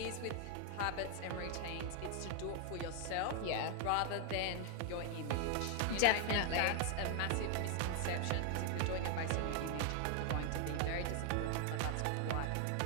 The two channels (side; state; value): both; different; correlation 0.00